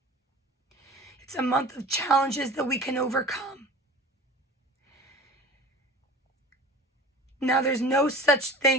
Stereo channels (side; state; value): both; normal; correlation 0.39